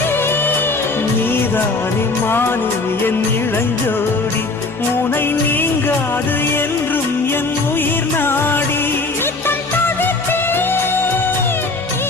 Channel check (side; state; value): right; quieter; 3.5 dB